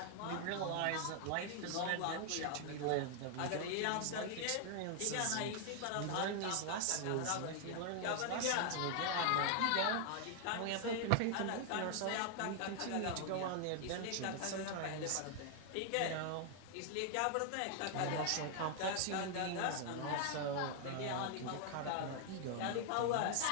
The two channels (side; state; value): both; different; correlation 0.00